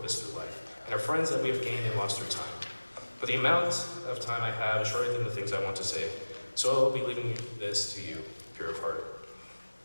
through life, and our friends that we have gained and lost through time. But the amount of time I have is shorter than the things I want to say, so I'll be leaving this to you, pure of heart.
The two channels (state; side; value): inverted; both; correlation -1.00